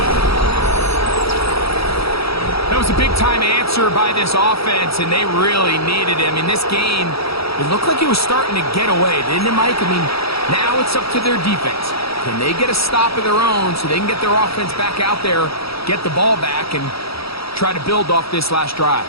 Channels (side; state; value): right; late; 0.76 ms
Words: That was a big-time answer by this offense, and they really needed him. In this game, it looked like he was starting to get away, didn't it, Mike? I mean, now it's up to their defense. Can they get a stop of their own so they can get their offense back out there, get the ball back, and try to build off this last drive?